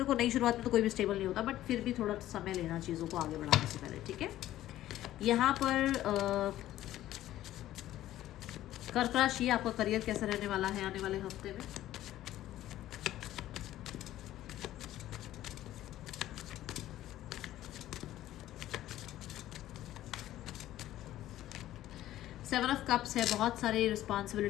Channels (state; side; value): quieter; right; 13.9 dB